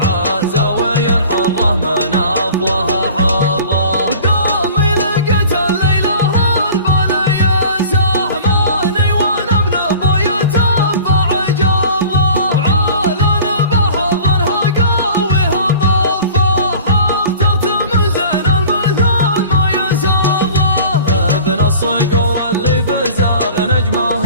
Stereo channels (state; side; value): inverted; both; correlation -0.43